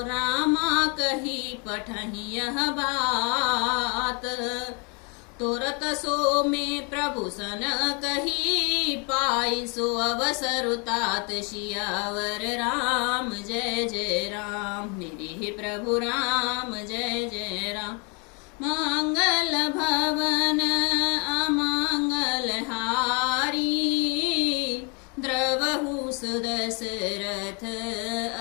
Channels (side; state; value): right; quieter; 34.5 dB